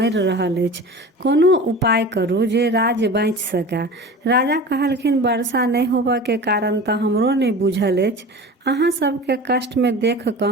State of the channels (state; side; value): normal; both; correlation 0.35